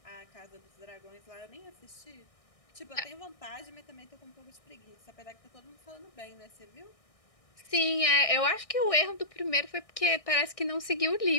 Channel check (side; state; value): right; late; 1.6 ms